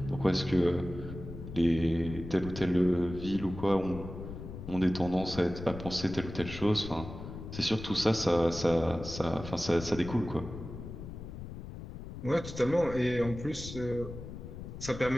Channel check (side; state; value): left; noise; rumble, 10 dB below the sound